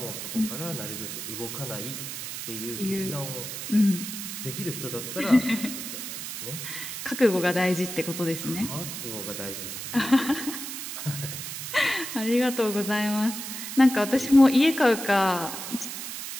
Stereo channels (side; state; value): right; noise; hiss, 7 dB below the sound